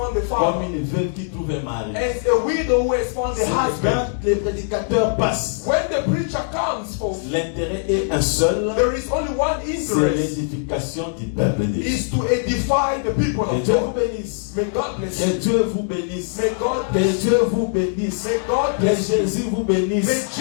a comme father, une veuve qui trouve un mari. as a widow who has found C'est a que husband. quand les prédicateurs passent, When the preacher comes forth, l'intérêt est un seul, there is only one c'est interest, l'édification du peuple de Dieu. is to edify the people Que of Dieu vous God. bénisse. May God bless Que you. Dieu vous bénisse. May God Que bless you. Dieu vous bénisse. May God Que bless you. Jésus vous bénisse.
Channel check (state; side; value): silent; right; digital silence